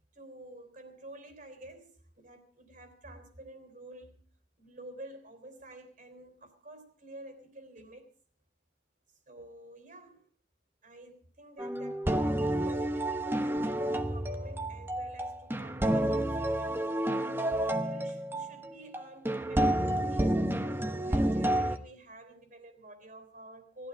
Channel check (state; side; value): normal; both; correlation 0.82